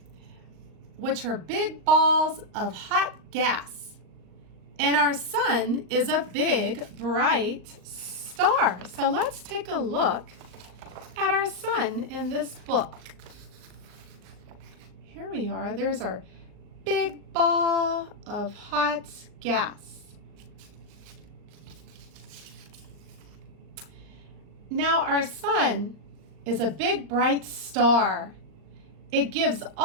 which are big balls of hot gas. And our sun is a big, bright star. So let's take a look at our sun in this book. Here we are. There's our big ball of hot gas. Now our sun is a big, bright star. It gives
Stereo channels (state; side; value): late; left; 38 ms